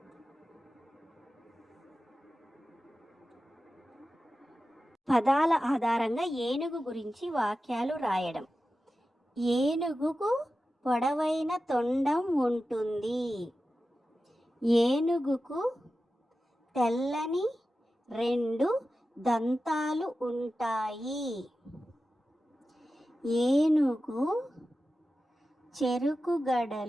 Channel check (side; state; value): both; normal; correlation 0.93